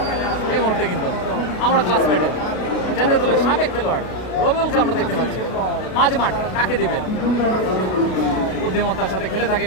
এই মুহূর্তে কিন্তু আমরা ক্লাসমেটের জাতীয় দলের সাবেক খেলোয়াড় রবিউলকে আমরা দেখতে পাচ্ছি মাঝে মাঠ কাকে দিবেন, বুদ্ধিমত্তার সাথে খেলে থাকেন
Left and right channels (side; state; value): right; late; 32 ms